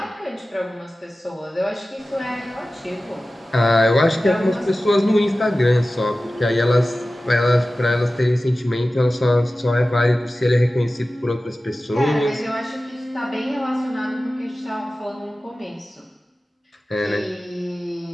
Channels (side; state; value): both; normal; correlation 0.95